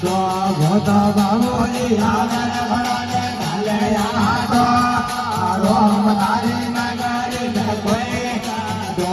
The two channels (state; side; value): identical; both; correlation 1.00